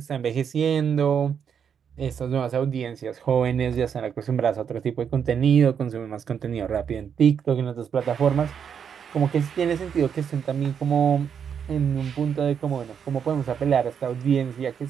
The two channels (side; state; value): left; quieter; 7.5 dB